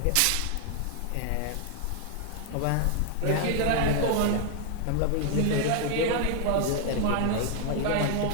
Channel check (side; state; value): both; different; correlation 0.00